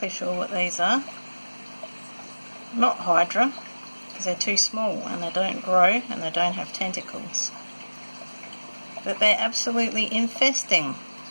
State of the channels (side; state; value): both; inverted; correlation -1.00